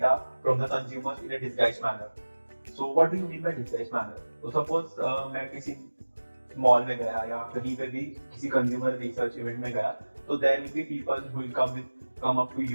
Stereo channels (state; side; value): inverted; both; correlation -1.00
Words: from the consumers in a disguised manner. So what do you mean by disguised manner? So suppose मैं किसी mall में गया या कहीं पे भी किसी consumer research event में गया, तो there will be people who will come up to